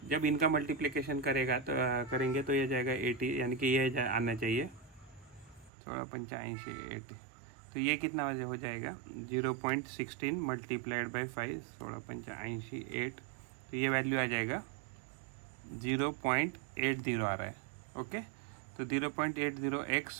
जब इनका मल्टीप्लिकेशन करेंगे तो ये जाएगा 80, यानी कि ये आना चाहिए 16 85 80। तो तो ये कितना हो जाएगा 0.16 मल्टीप्लाइड बाई 5, 16 85 8, तो ये वैल्यू आ जाएगा 0.80 आ रहा है। ओके, तो 0.80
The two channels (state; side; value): drops out; left; at 5.7 s